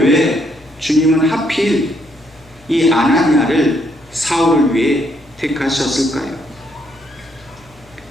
주님은 하필 이 아나니아를 사울을 위해 택하셨을까요?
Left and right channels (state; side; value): noise; left; hum, 27 dB below the sound